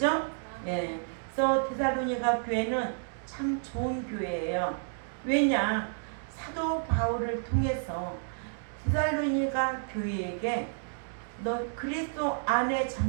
예. 그래서 데살로니가 교회는 참 좋은 교회예요. 왜냐? 사도 바울을 통해서 데살로니가 교회에게 너 그리스도 안에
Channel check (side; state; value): left; silent; digital silence